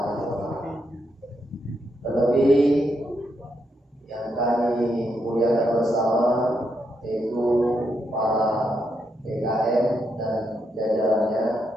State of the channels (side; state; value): both; normal; correlation 0.80